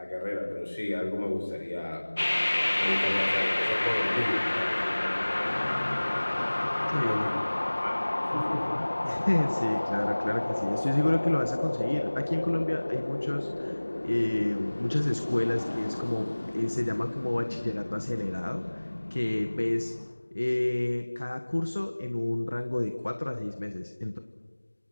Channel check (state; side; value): inverted; both; correlation -1.00